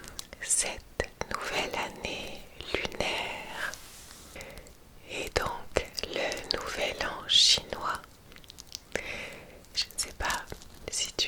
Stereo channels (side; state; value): both; identical; correlation 1.00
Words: cette nouvelle année lunaire et donc le nouvel an chinois. Je ne sais pas si tu